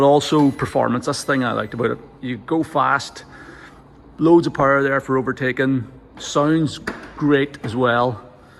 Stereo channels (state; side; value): identical; both; correlation 1.00